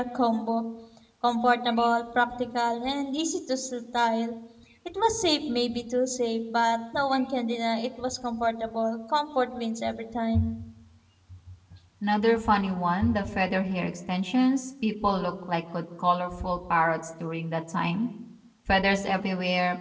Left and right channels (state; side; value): identical; both; correlation 1.00